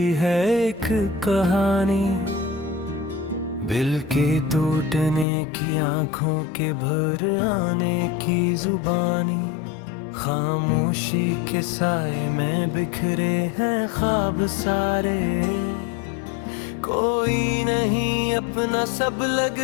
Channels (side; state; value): right; drops out; at 5.2 s